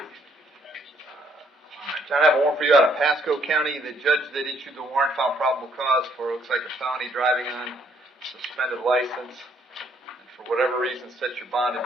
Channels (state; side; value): normal; both; correlation 0.67